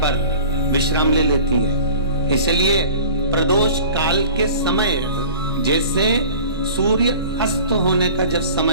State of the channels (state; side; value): inverted; both; correlation -0.42